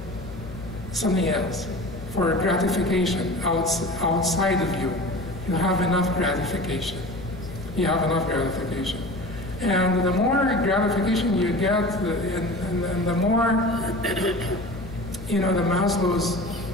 something else, for gratification outside of you. You have enough gratification. You have enough gratification. And the more gratification you get, and the more, the Maslow's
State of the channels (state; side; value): noise; left; hum, 14 dB below the sound